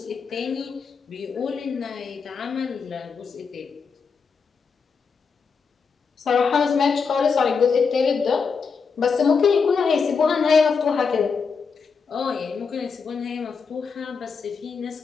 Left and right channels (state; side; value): quieter; right; 5.5 dB